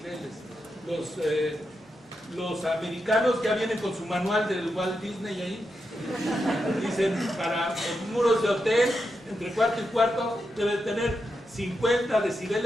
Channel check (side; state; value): both; normal; correlation 0.86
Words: Los americanos ya vienen con su manual del Walt Disney ahí. Dicen, para los muros de hotel, entre cuarto y cuarto, debe tener 50